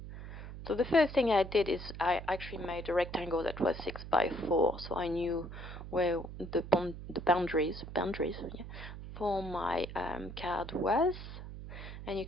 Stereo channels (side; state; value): right; noise; hum, 10 dB below the sound